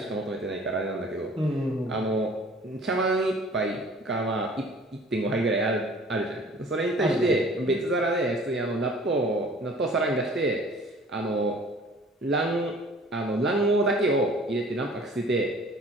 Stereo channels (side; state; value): both; normal; correlation 0.50